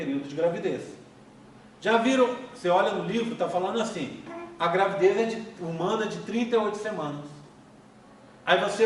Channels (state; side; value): identical; both; correlation 1.00